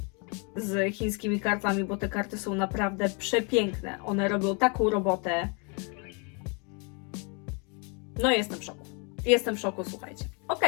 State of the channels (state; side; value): quieter; right; 34.8 dB